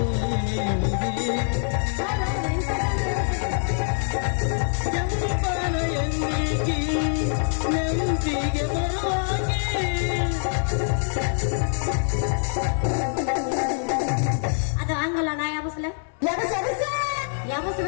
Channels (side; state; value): right; silent; 58 dB below the other